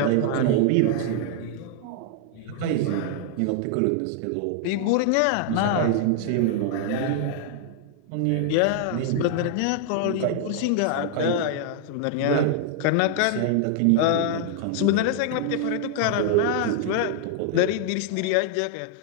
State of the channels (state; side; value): different; both; correlation 0.00